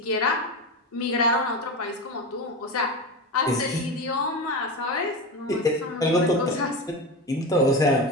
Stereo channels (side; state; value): both; normal; correlation 0.21